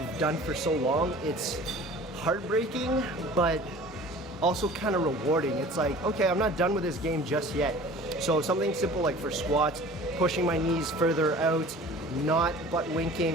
done for so long, it's heartbreaking, but also kind of rewarding. It's like, okay, I'm not done with this game just yet. So something simple like for squats, pushing my knees further out, not butt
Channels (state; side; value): normal; both; correlation 0.44